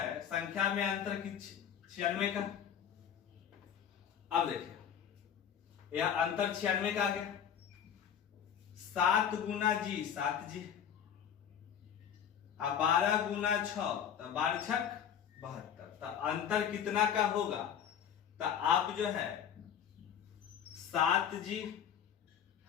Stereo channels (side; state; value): right; quieter; 8.7 dB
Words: संख्या में अंतर की 96 का। अब देखिए यह अंतर 96 का आ गया। 7 गुना जी 7 जी, अब 12 गुना 6, तो 12 छक 72। तो अंतर कितना का होगा, तो आप जो है 7 जी